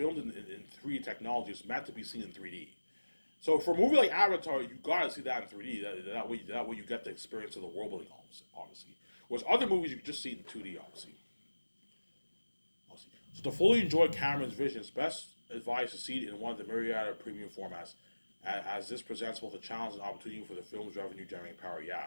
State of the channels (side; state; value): both; inverted; correlation -1.00